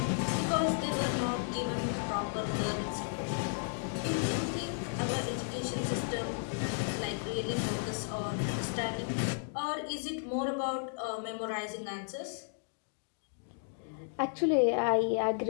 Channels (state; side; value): silent; right; digital silence